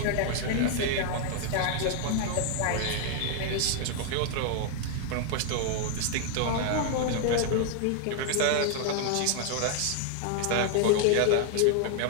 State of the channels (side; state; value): both; different; correlation 0.00